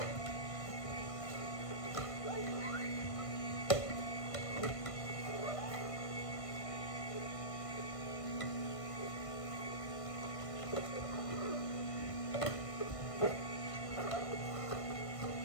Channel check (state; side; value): late; right; 1.5 ms